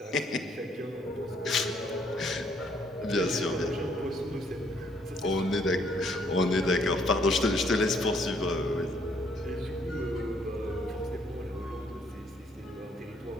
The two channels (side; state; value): both; normal; correlation 0.66